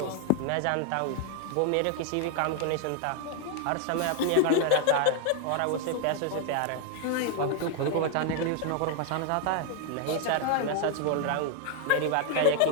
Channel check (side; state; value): both; different; correlation 0.00